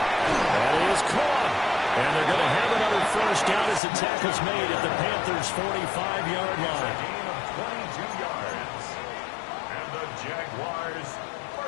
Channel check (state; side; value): drops out; right; at 3.8 s